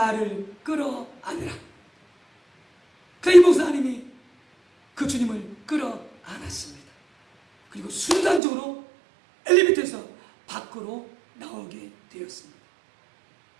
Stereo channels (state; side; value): drops out; left; at 8.4 s